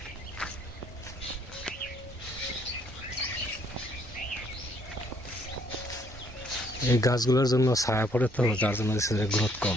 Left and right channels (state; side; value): normal; both; correlation 0.66